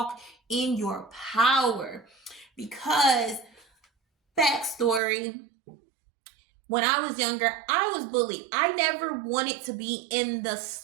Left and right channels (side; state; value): left; drops out; at 5.0 s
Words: in your power. Because, backstory, when I was younger, I was bullied. I never wanted to be in the